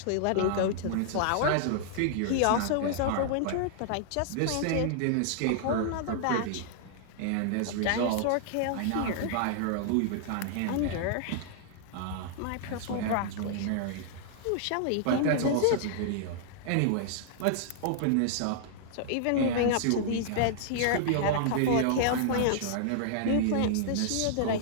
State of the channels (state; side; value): different; both; correlation -0.01